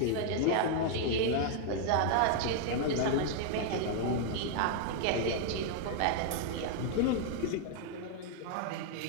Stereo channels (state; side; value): different; both; correlation 0.00